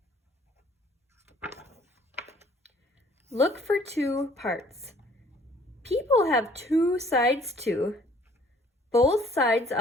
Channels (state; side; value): normal; both; correlation 0.58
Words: Look for two parts. People have two sides too. Both sides